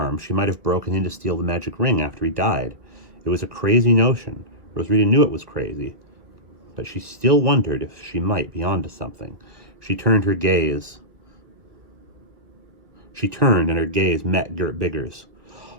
She might have broken in to steal the magic ring after he died. It was a crazy notion. Rosarita knew it was crazy, but she still wondered if she might be onto something. She turned, and her gaze met Gert Bigger's.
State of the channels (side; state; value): left; late; 1.7 ms